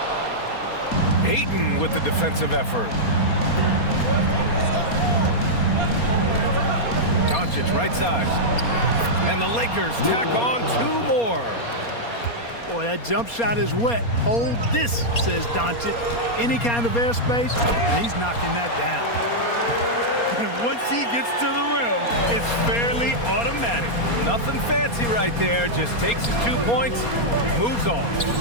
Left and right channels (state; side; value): late; right; 4.3 ms